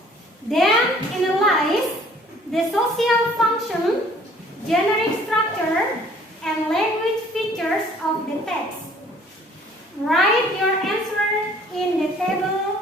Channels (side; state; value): both; normal; correlation 0.56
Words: then analyze the social function, generic structure, and language features of the text. Write your answer in the